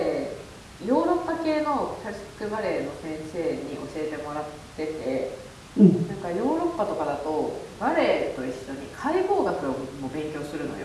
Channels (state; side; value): identical; both; correlation 1.00